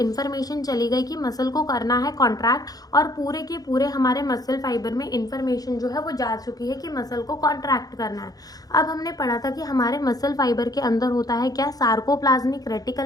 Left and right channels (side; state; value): right; late; 0.18 ms